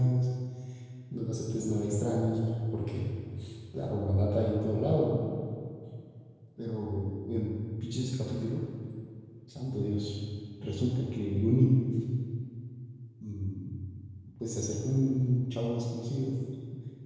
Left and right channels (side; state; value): both; identical; correlation 1.00